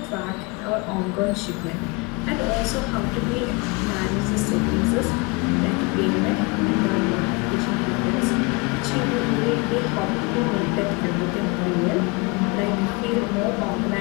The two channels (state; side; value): quieter; right; 27.7 dB